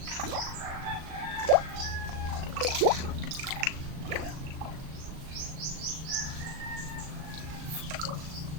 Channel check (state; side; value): late; left; 37 ms